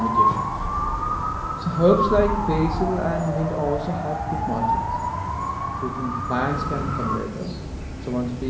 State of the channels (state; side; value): identical; both; correlation 1.00